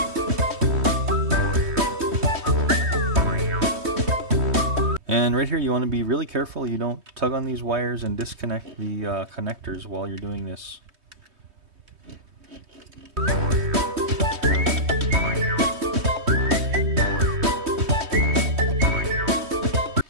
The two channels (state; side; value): late; left; 3.2 ms